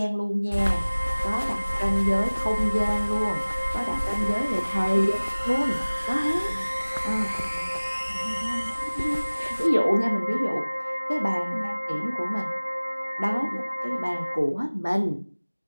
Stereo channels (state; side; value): inverted; both; correlation -1.00